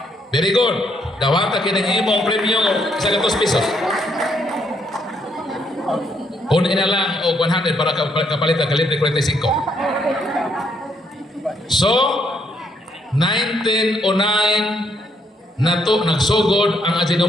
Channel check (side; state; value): both; normal; correlation 0.73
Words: Very good. Dawata kinang imong premyo 100 pesos. Kunin na lang o 100 para kapalit ang kalibre 45. So, 1909 nagsugod ang